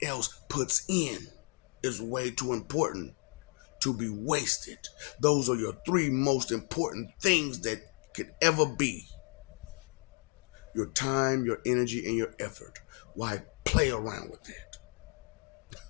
else puts in is way too important to be wasted. Those are your three most important things that could ever be: your time, your energy, and your effort. Why play around with it?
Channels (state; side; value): quieter; right; 36.7 dB